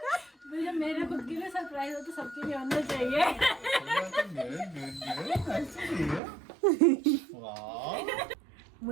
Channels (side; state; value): left; drops out; at 6.2 s